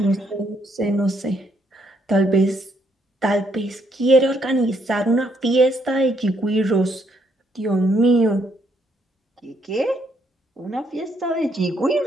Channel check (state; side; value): normal; both; correlation 0.72